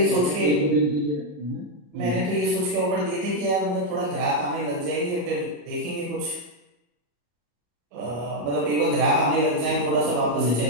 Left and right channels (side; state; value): left; late; 34 ms